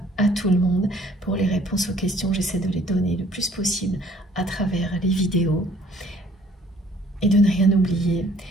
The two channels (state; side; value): normal; both; correlation 0.58